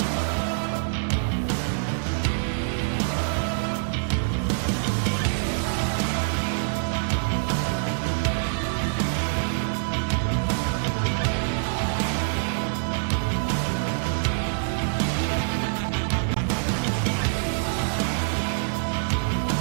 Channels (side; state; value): left; silent; 61 dB below the other